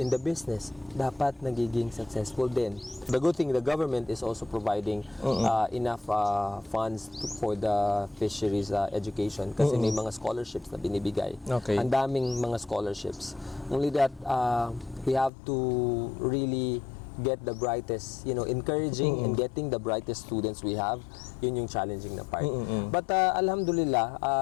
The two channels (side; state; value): right; drops out; at 15.3 s